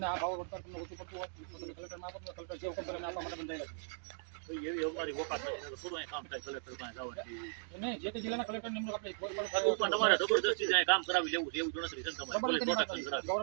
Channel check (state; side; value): silent; left; digital silence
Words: આ ભાવ વળતર તમને ઓછું પડતું હોય તો તમે કલેક્ટરમાં આપો, કલેક્ટર જે હુકમ કરે આપવા માટે બંધાયેલા છે. એવી અમારી વોકાત નથી, થોડું અહીં કામ થાય કલેક્ટર પાસે જવાનું. નહીં, જે તે જિલ્લાના કલેક્ટર નિમણૂક આપણે પણ તમારે જબરદસ્તી જાય કામ કરાવી લેવું છે એવું ગણતરી છે ને તમારે પ્રોટેક્શન